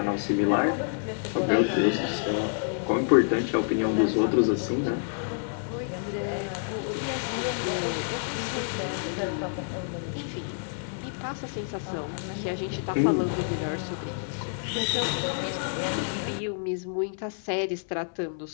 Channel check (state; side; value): silent; right; digital silence